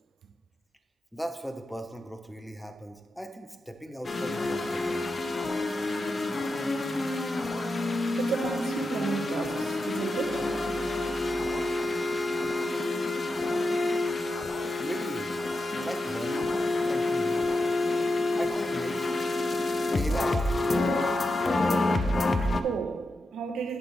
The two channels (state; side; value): normal; both; correlation 0.88